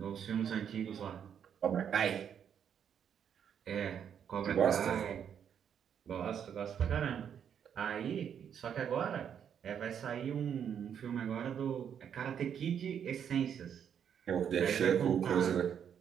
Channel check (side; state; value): left; quieter; 8.3 dB